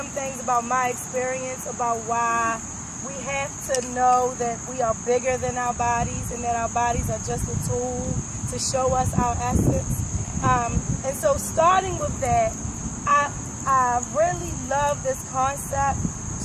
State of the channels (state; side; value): identical; both; correlation 1.00